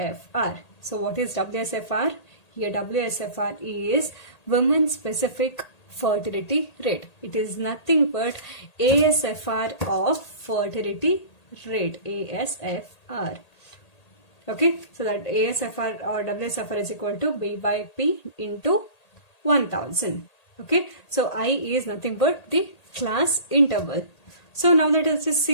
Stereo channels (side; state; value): right; late; 1.8 ms